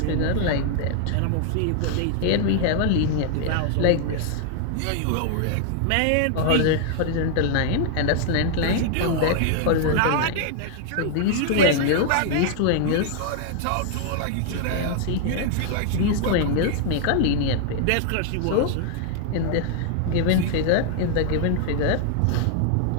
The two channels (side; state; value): both; different; correlation 0.00